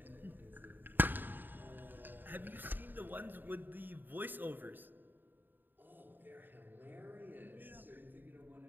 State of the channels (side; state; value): left; late; 0.092 ms